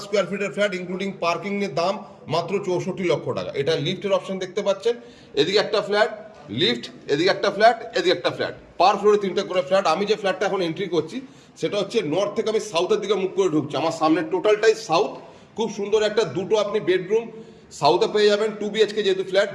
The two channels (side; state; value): both; identical; correlation 1.00